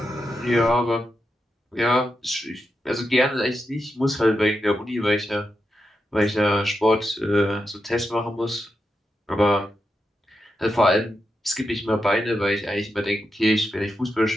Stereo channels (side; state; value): both; normal; correlation 0.87